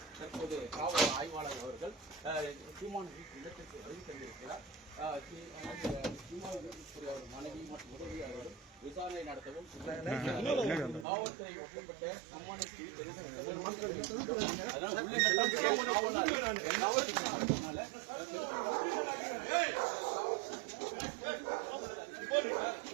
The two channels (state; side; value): drops out; left; at 11.1 s